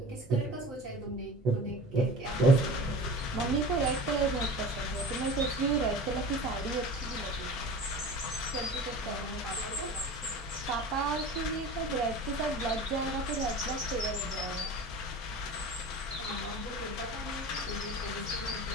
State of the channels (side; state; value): both; normal; correlation 0.36